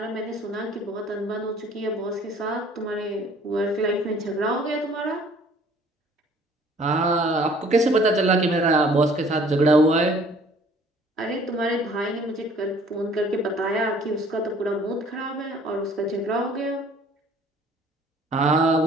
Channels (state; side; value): normal; both; correlation 0.55